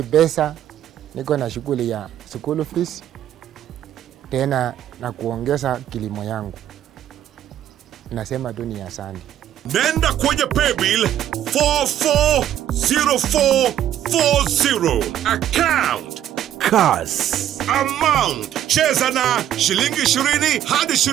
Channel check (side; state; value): left; quieter; 11.3 dB